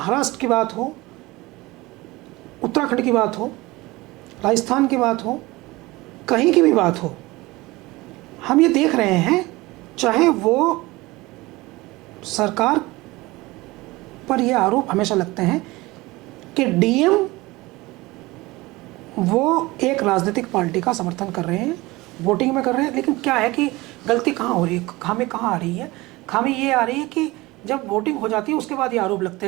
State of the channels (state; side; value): quieter; left; 21.0 dB